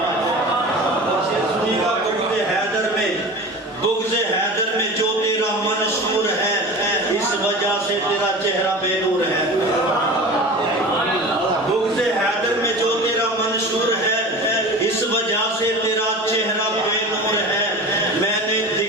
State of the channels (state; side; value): normal; both; correlation 0.34